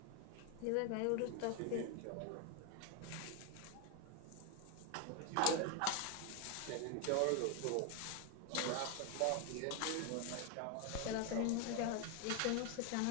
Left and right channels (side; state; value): both; different; correlation 0.01